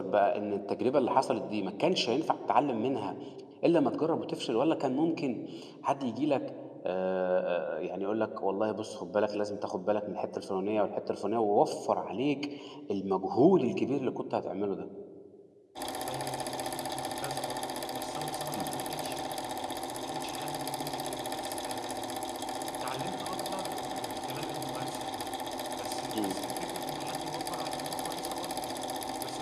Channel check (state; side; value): identical; both; correlation 1.00